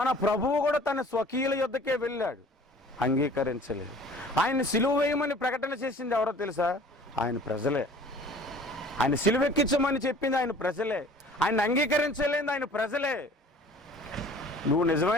ప్రభువు కూడా తన స్వకీయుల యొద్దకే వెళ్ళాడు, అంగీకరించలేదు. ఆయన సిలువ వేయమని ప్రకటన చేసింది ఎవరో తెలుసా? ఆయన ప్రజలే. ఆయన సిలువెక్కించమని చెప్పింది ఆయన ప్రజలే. ఆయన అంగీకరించలేదు ఆయన ప్రజలే. నువ్వు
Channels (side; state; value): both; normal; correlation 0.49